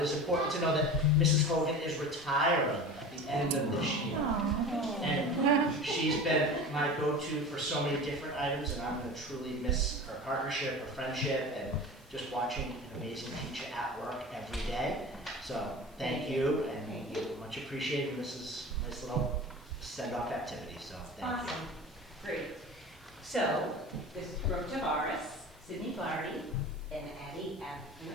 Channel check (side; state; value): both; normal; correlation 0.34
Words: it is important to know that Mrs. Hogan is retiring at the end of this year. And she's been my go-to for so many different items, and I'm gonna truly miss her partnership, her friendship, and just watching an amazing teacher at work every day. So, thank you, and much appreciated. This is a nice little send-off activity, so thank you. Awesome, great. So, this is Brooke Tavares, Sydney Flaherty, and Addie